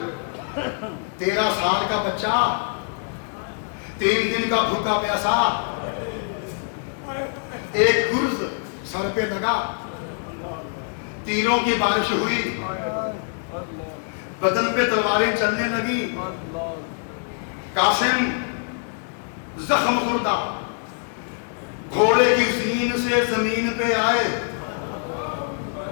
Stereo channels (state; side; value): silent; right; 63 dB below the other